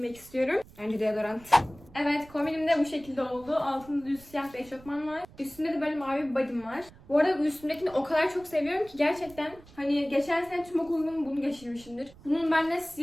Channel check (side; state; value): right; noise; rumble, 22 dB below the sound